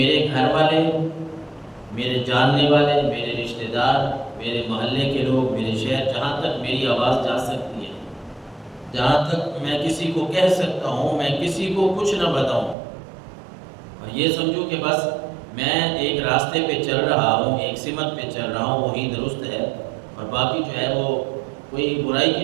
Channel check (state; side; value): drops out; left; at 12.8 s